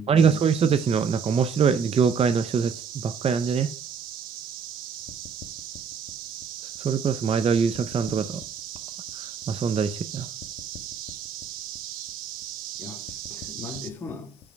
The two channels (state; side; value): quieter; left; 6.2 dB